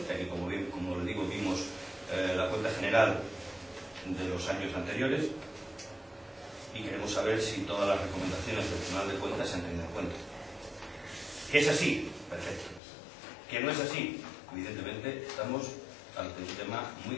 ya que como les digo, vimos la cuenta general de los años anteriores, y queremos saber si todas las recomendaciones del Tribunal de Cuentas se han tenido en cuenta. ¿Que es así? Perfecto. ¿Que no es así? Evidentemente estamos ante un tema muy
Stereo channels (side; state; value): right; drops out; at 12.8 s